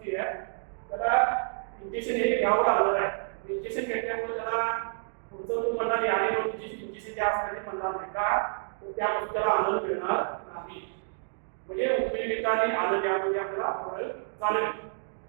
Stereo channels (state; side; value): silent; left; digital silence